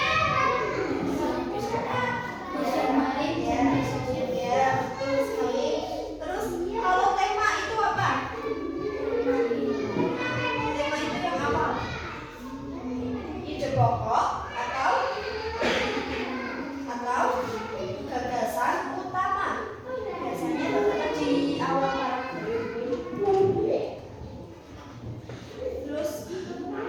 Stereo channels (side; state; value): both; identical; correlation 1.00